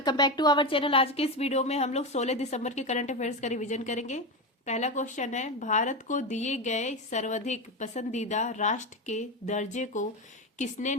back to our channel. आज के इस वीडियो में हम लोग 16 दिसंबर के करंट अफेयर्स का रिवीजन करेंगे। पहला क्वेश्चन है, भारत को दिए गए सर्वाधिक पसंदीदा राष्ट्र के दर्जे को किसने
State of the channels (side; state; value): both; normal; correlation 0.16